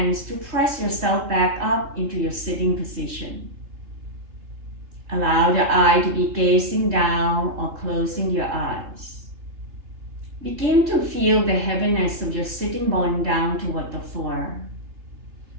to press yourself back up into your sitting position. Allow the eye to be gazing down or closing your eyes. Begin to feel the heaviness of your sitting bone down toward the floor.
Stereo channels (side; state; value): left; late; 3.1 ms